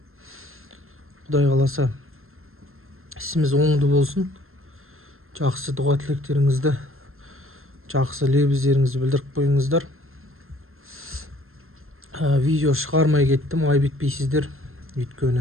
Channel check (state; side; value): late; left; 0.61 ms